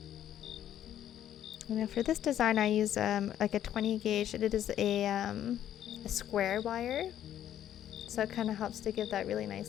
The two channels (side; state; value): right; quieter; 11.0 dB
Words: And for this design, I use like a 20 gauge. It is a square wire, so it kind of helps to give that really